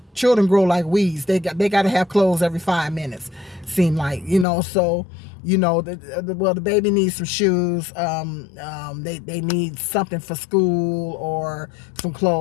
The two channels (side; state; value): right; drops out; at 4.5 s